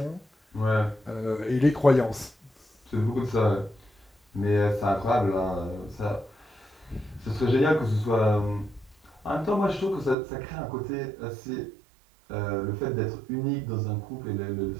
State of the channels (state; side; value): drops out; left; at 10.2 s